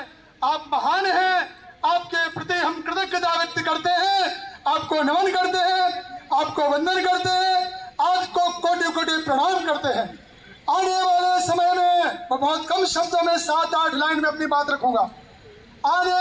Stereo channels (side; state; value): both; identical; correlation 1.00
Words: आप महान हैं, आपके प्रति हम कृतज्ञता व्यक्त करते हैं, आपको नमन करते हैं, आपको वंदन करते हैं, आपको कोटि कोटि प्रणाम करते हैं। आने वाले समय में मैं बहुत कम शब्दों में 7-8 लाइन में अपनी बात रखूंगा। आने